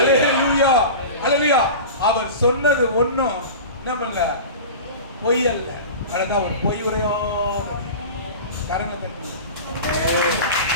அல்லேலூயா. அவர் சொன்னது ஒண்ணும் நம்மள பொய் அல்ல. அதுதான் ஒரு பொய் உரையாத கரங்களை தட்டி.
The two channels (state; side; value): inverted; both; correlation -0.33